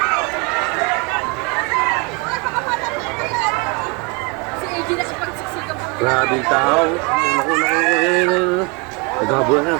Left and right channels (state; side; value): quieter; left; 29.8 dB